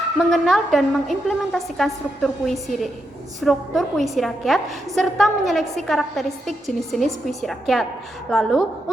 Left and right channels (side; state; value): both; normal; correlation 0.84